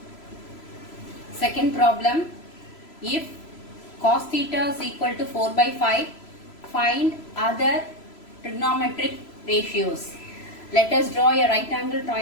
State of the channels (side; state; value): right; late; 3.0 ms